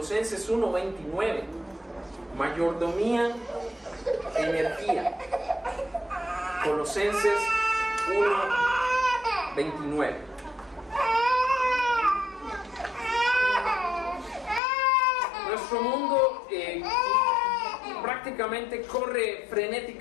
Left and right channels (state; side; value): drops out; right; at 14.6 s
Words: 1:29. Mayordomía, energía. Colosenses 1:29. Nuestro mundo prácticamente corre